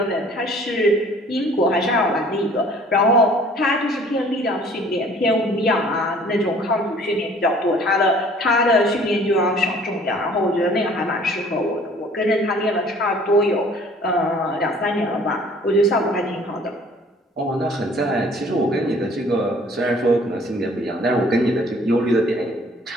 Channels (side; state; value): both; normal; correlation 0.53